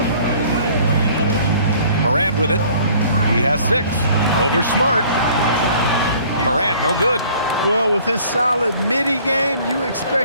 Morant with it. He has 6. Over Smart. Morant, no good. Well, with his solid midi game, you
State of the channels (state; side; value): inverted; both; correlation -0.53